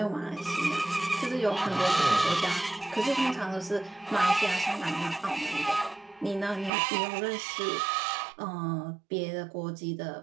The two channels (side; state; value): left; drops out; at 6.7 s